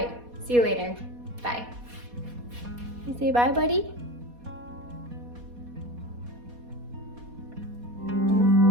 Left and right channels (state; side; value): late; left; 4.2 ms